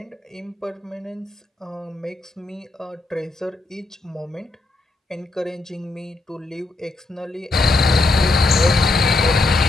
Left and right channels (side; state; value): right; quieter; 3.1 dB